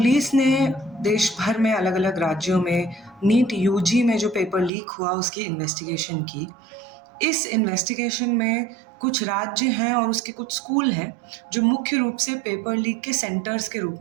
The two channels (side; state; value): left; drops out; at 4.7 s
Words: ने देश भर में अलग-अलग राज्यों में नीट यूजी में जो पेपर लीक हुआ उसकी इन्वेस्टिगेशन की। इस इन्वेस्टिगेशन में कुछ राज्य हैं और उसके कुछ स्कूल हैं जो मुख्य रूप से पेपर लीक के सेंटर्स के रूप